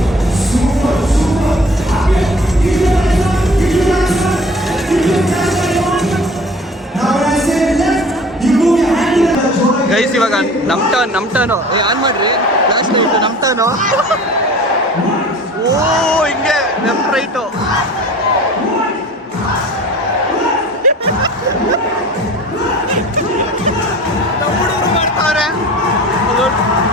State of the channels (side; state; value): both; normal; correlation 0.44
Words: ಗೈಸ್ ಇವಾಗ ನಮ್ಮ ಟರ್ನು ಆನ್ ಮಾಡ್ರಿ ಫ್ಲಾಶ್ ಲೈಟ್. ನಮ್ಮ ಟರ್ನು. ಓ ಹಿಂಗೆ ಲೆಫ್ಟ್ ರೈಟು. ಹುಡುಗರು ಮಾಡ್ತಾವ್ರೆ.